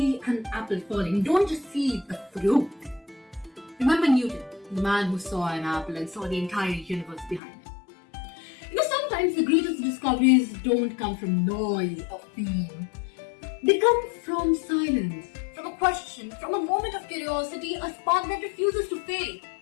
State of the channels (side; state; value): right; drops out; at 7.4 s